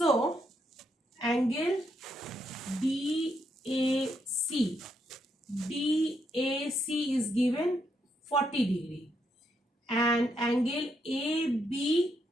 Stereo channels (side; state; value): both; normal; correlation 0.78